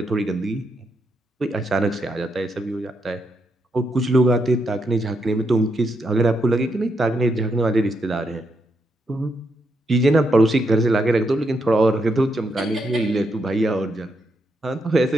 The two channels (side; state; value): both; normal; correlation 0.80